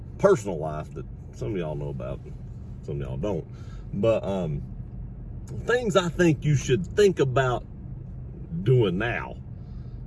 personal life that some of y'all know about, some of y'all don't. But things I think you should think about doing now,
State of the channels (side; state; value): both; identical; correlation 1.00